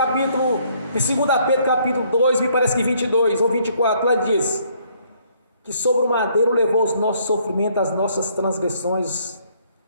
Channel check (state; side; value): inverted; both; correlation -0.66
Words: 2 Pedro, capítulo 2, me parece que 22 ou 24, lá diz que sobre o madeiro levou os nossos sofrimentos, as nossas transgressões,